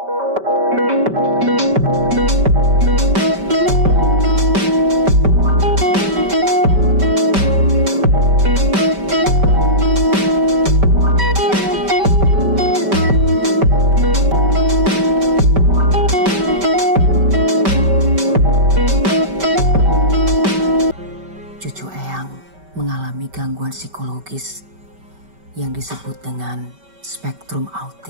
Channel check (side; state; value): left; late; 5.2 ms